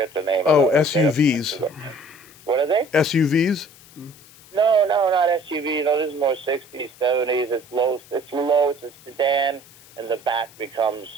the name of them. SUVs. What are they? SUVs? No, not SUVs. No, this is more 60s, 70s. It's low. It's a sedan, and the back becomes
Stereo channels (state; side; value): noise; left; hiss, 24 dB below the sound